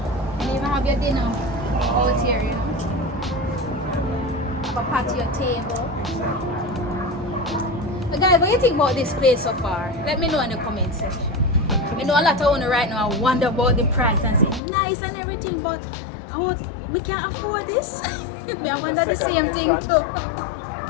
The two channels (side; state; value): right; drops out; at 14.6 s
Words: And you even have your dinner out here, you know. Have a patio table. But guys, what do you think about this place so far? Let me know in the comment section. I know a lot of owners right now wonder about the price and say nice and everything, but we can't afford this. I wonder the same thing too.